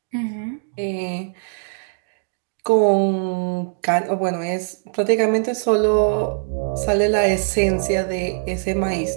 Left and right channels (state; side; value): silent; left; 65 dB below the other